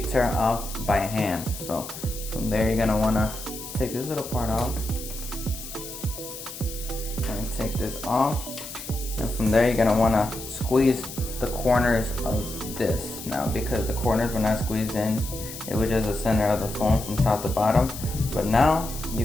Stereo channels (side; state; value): left; noise; hiss, 11 dB below the sound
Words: off by hand. So from there you're gonna wanna take this little part off and take this off. And from there you're gonna wanna squeeze the corners of this. Now because the corners were not squeezed in, it was just the center of the phone from top to bottom. But now you